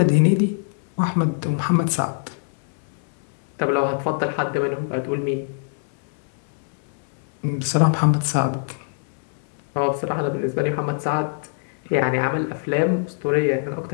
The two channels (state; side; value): silent; right; 63 dB below the other